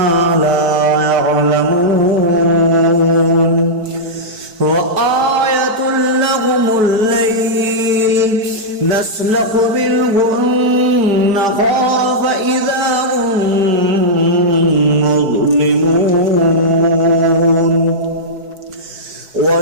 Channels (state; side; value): late; left; 4.6 ms